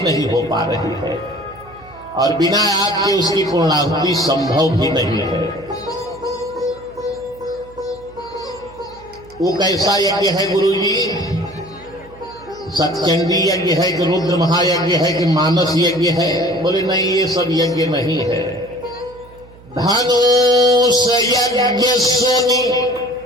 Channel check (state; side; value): noise; right; hum, 23 dB below the sound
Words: नहीं हो पा रही है, और बिना आपके उसकी पूर्णाहुति संभव भी नहीं है। वो कैसा यज्ञ है गुरुजी? सतचंडी यज्ञ है कि रुद्र महायज्ञ है कि मानस यज्ञ है? बोले नहीं, ये सब यज्ञ नहीं है। धनुष यज्ञ सुनी